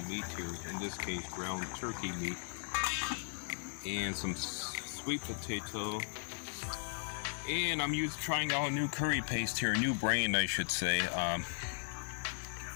meat here, in this case ground turkey meat. And some sweet potato, and I'm trying out a new curry paste here, a new brand I should say.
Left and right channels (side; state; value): right; silent; digital silence